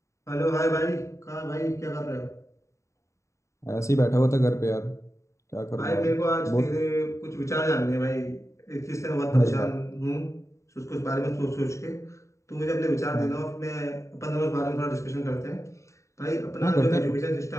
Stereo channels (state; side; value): late; right; 0.14 ms